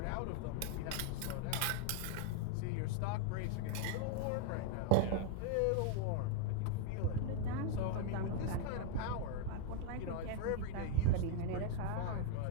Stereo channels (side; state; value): both; different; correlation 0.00